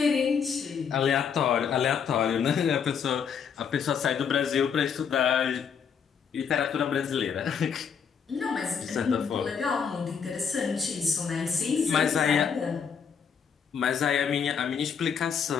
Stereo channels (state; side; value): quieter; right; 6.9 dB